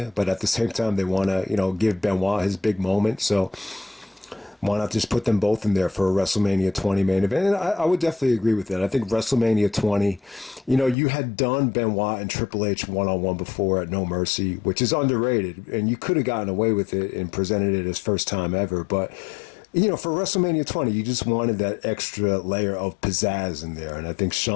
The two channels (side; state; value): right; drops out; at 11.0 s